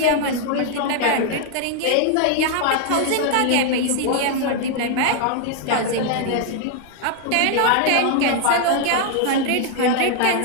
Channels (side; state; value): both; different; correlation 0.00